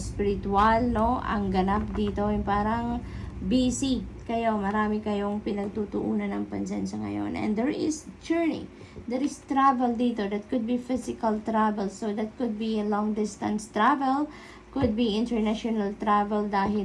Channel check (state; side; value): identical; both; correlation 1.00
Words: no? Ang ganap dito, yung parang busy kayo, marami kayong pinagtutuunan ng pansin sa ngayon. And there is journey. There is travel dito. That could be physical travel. So that could be a long distance travel. Could be international travel dahil